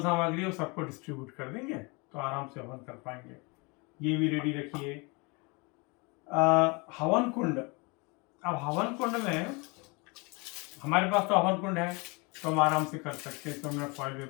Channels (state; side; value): quieter; right; 29.0 dB